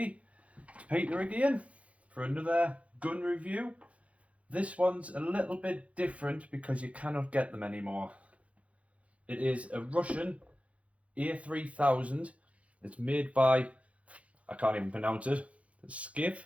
it's Peter again for another gun review. This one's a little bit different because you cannot get them anymore. It is a Russian A-3000. It's made by, I can't even pronounce it, Skiff,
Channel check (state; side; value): late; left; 0.064 ms